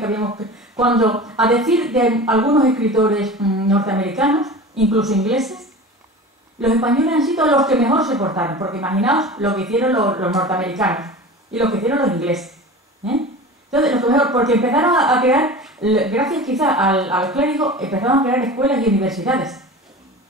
habíamos... Cuando, a decir de algunos escritores norteamericanos, incluso ingleses, los españoles han sido los que mejor se portaron, porque imaginaos lo que hicieron los norteamericanos y lo que hicieron los ingleses. Entonces, lo que mejor, porque empezaron a crear, gracias quizá a los clérigos, empezaron a crear escuelas y universidades.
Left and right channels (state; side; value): normal; both; correlation 0.34